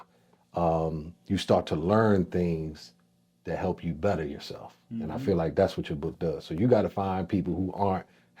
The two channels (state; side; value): identical; both; correlation 1.00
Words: you start to learn things that help you better yourself. And I feel like that's what your book does. So you got to find people who aren't